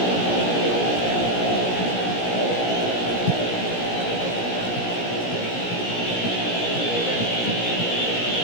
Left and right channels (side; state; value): right; late; 17 ms